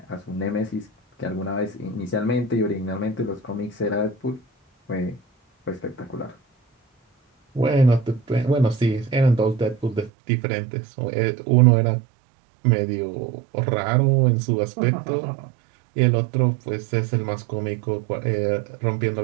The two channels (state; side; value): drops out; left; at 10.1 s